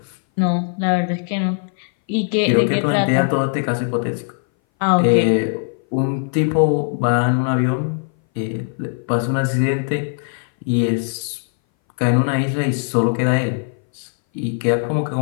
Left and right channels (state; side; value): silent; right; 60 dB below the other